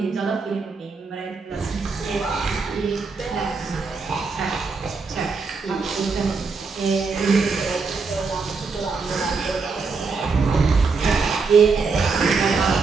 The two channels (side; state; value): left; quieter; 4.6 dB